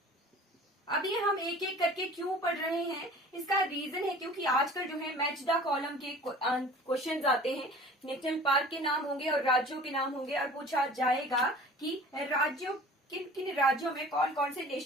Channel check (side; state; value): both; normal; correlation 0.44